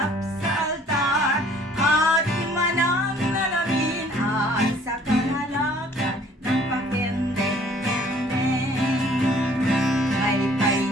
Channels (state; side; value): normal; both; correlation 0.56